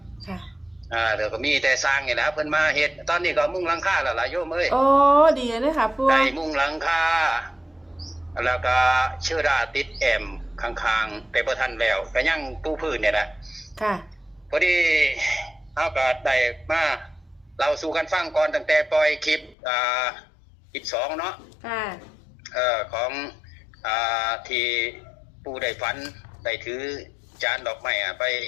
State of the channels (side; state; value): right; drops out; at 19.6 s